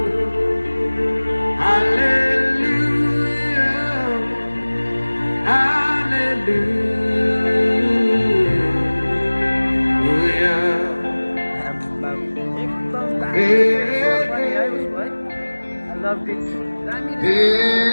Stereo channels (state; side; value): inverted; both; correlation -1.00